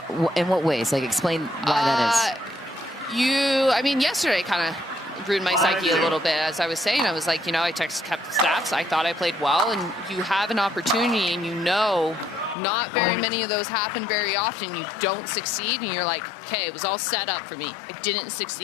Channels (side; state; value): right; drops out; at 12.6 s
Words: In what ways? Like, explain why that is. I mean, yesterday kind of ruined my psyche a little bit. As I was saying, I was like, I kept the stats. I thought I played well, and you have an opportunity, and not very many of those happen very often. You don't succeed, and you're like, okay, it was all set up for me. I didn't